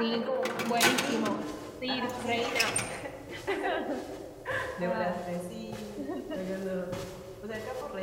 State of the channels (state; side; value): identical; both; correlation 1.00